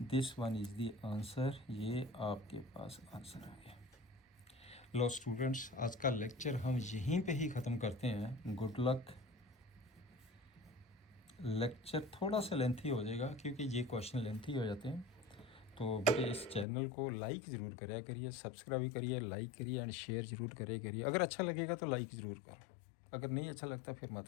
This one is the answer. ये आपके पास आंसर आ गया। लो स्टूडेंट्स, आज का लेक्चर हम यहीं पे ही ख़त्म करते हैं। Good luck. लेक्चर थोड़ा सा लेंथी हो जाएगा क्योंकि ये क्वेश्चन लेंथी हो जाते हैं, तो बेटे इस चैनल को लाइक ज़रूर करिए, सब्सक्राइब करिए, लाइक करिए एंड शेयर ज़रूर करिए। अगर अच्छा लगेगा तो लाइक ज़रूर करो, अगर नहीं अच्छा लगता फिर मत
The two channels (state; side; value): drops out; right; at 16.7 s